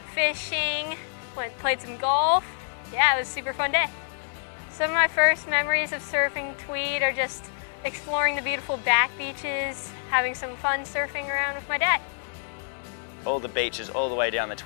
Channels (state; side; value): silent; right; 60 dB below the other